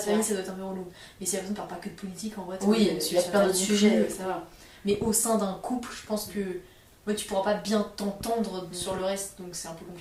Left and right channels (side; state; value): both; identical; correlation 1.00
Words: famille vrai. ça doit être un peu relou. Mais si la personne parle pas que de politique en vrai, Oui, tu il y a plein d'autres sujets. ça va. Mais au sein d'un couple, je pense que ouais, tu pourras pas bien t'entendre sur le reste, donc c'est un peu